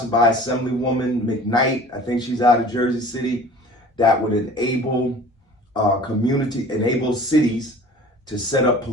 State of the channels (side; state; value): both; normal; correlation 0.45